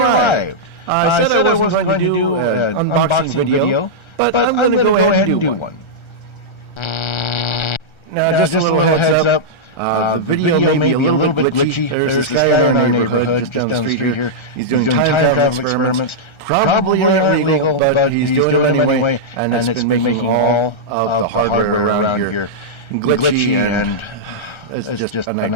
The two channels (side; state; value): right; late; 1.3 ms